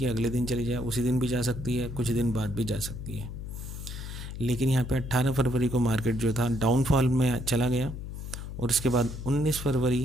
अगले दिन चली जाए, उसी दिन भी जा सकती है, कुछ दिन बाद भी जा सकती है। लेकिन यहाँ पे 18 फरवरी को मार्केट जो था डाउनफॉल में चला गया, और उसके बाद 19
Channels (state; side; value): noise; left; hum, 8 dB below the sound